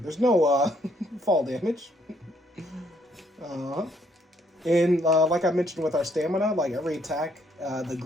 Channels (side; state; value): both; normal; correlation 0.69